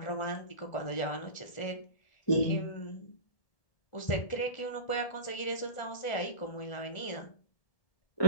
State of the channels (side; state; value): right; late; 1.4 ms